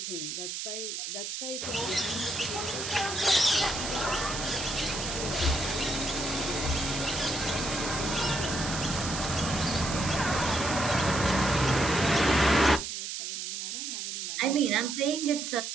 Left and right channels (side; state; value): right; noise; hiss, 5 dB below the sound